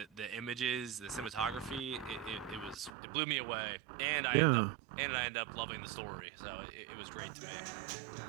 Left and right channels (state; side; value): drops out; left; at 2.9 s